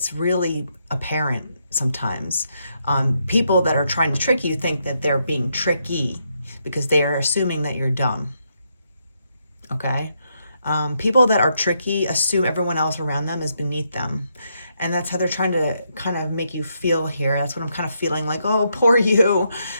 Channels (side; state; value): both; inverted; correlation -0.79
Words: really apparent sometimes. People that are trying to trick you think that they're being tricky because they are assuming that you're dumb. Okay? People that are tricky assume everyone else around them is beneath them. And that's how they're trying to kind of make you feel here. That's what I'm kind of feeling like, oh, poor you.